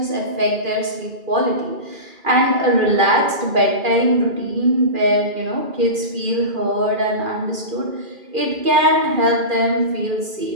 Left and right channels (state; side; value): late; left; 2.4 ms